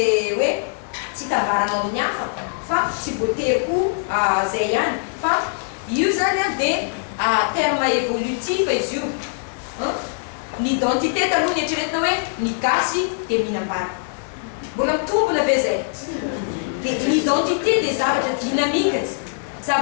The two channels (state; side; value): silent; right; 64 dB below the other